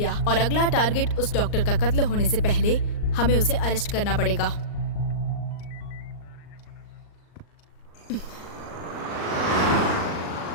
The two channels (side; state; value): right; late; 39 ms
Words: और अगला टारगेट उस डॉक्टर का कत्ल होने से पहले हमें उसे अरेस्ट करना पड़ेगा।